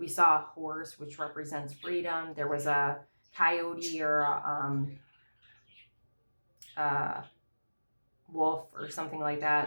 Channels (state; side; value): inverted; both; correlation -1.00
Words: saw a horse, which represents freedom. There was a coyote or a wolf or something like